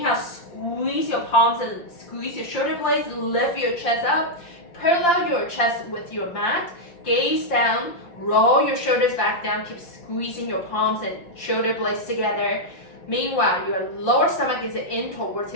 squeeze your palms and squeeze your shoulder blades. Lift your chest up. Parallel your chest with your mat. Gaze down. Roll your shoulders back down. Keep squeezing your palms and shoulder blades together. Meanwhile, your lower stomach is in towards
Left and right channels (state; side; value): late; right; 5.7 ms